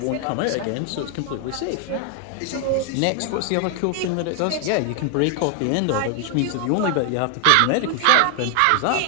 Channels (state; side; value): different; both; correlation 0.00